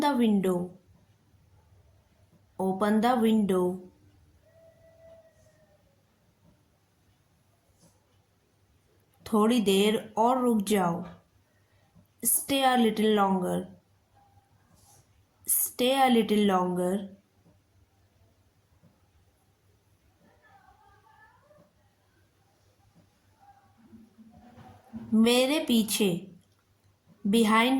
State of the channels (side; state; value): both; identical; correlation 1.00